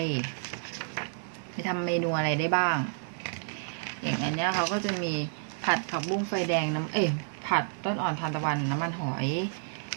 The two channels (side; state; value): left; silent; digital silence